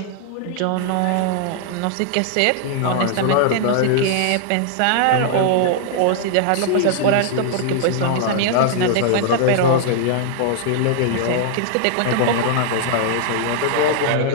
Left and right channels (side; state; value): both; different; correlation -0.01